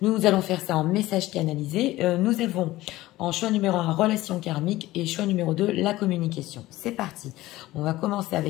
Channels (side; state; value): right; quieter; 17.2 dB